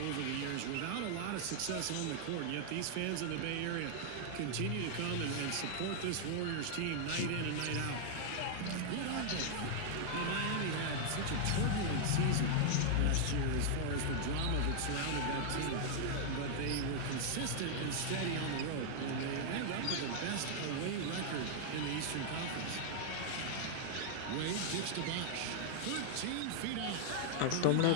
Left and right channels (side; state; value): both; different; correlation -0.01